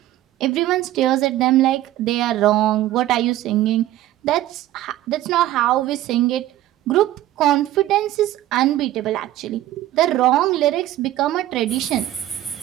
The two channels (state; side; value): quieter; left; 14.3 dB